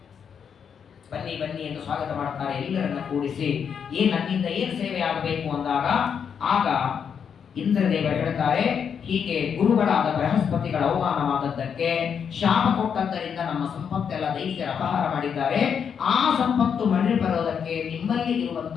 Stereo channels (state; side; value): quieter; right; 7.3 dB